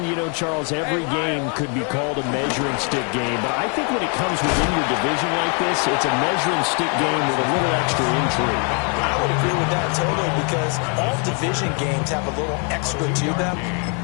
you know, Charles, every game could be called a measuring stick game. But I think when it comes within your division like this, it's a measuring stick game with a little extra intrigue. I would agree with that totally, because all division games have a little extra to them.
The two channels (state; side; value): quieter; right; 38.4 dB